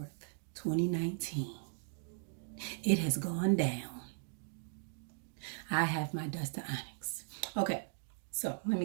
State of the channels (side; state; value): left; silent; digital silence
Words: 2019, it has gone down. I have my dust of Onyx. Okay, so let me